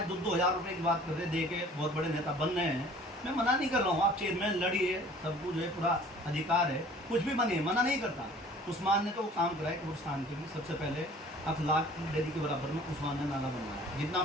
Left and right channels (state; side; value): normal; both; correlation 0.50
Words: 2-2 हज़ार रुपये की बात कर रहे, दे के बहुत बड़े नेता बन रहे हैं, मैं मना नहीं कर रहा हूँ, आप चेयरमैन लड़िए, सबको जो है पूरा अधिकार है, कुछ भी बनिए, मना नहीं करता। उस्मान ने तो वो काम कराया कब्रिस्तान के लिए, सबसे पहले अखलाक डेरी के बराबर में उस्मान ने नाला बनवाया। जितना